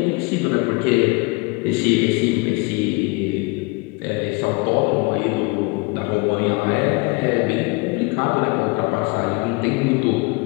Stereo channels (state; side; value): quieter; right; 27.6 dB